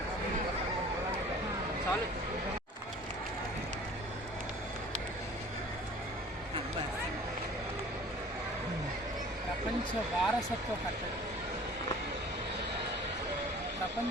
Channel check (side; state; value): both; normal; correlation 0.47